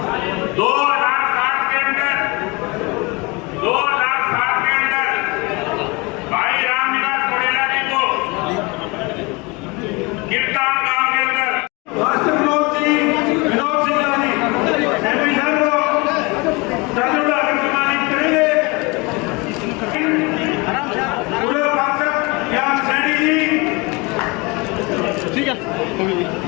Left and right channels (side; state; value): right; quieter; 26.5 dB